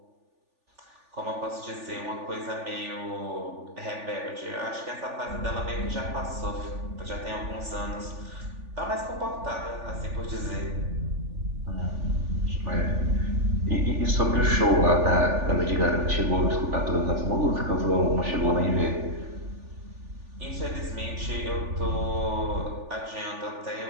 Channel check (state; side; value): late; left; 3.4 ms